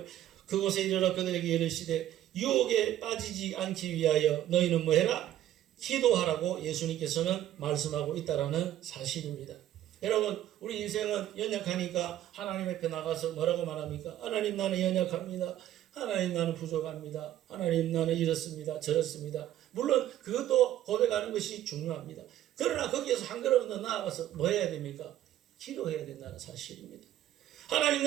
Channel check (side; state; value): left; quieter; 12.6 dB